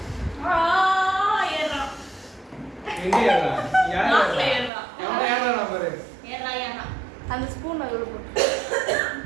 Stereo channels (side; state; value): left; drops out; at 4.7 s